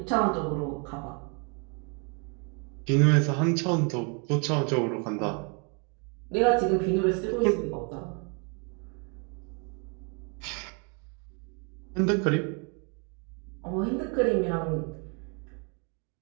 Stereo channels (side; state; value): left; quieter; 35.4 dB